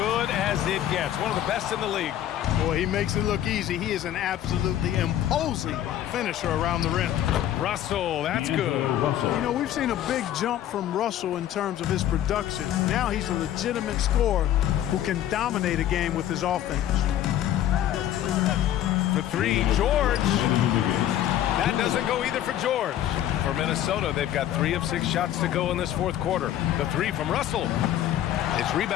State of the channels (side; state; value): right; quieter; 11.8 dB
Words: as it gets. One of the best in the league. Boy, he makes it look easy. He is an absolutely imposing finisher around the rim. Russell, that's good. You know, we've seen a big jump from Russell in terms of his production. Now he's a legitimate scorer who can dominate a game with his offense. For 3, George. That doesn't go either for George. For Minnesota, they've got 3 of 6 shots to go in this fourth quarter. The 3 from Russell. It's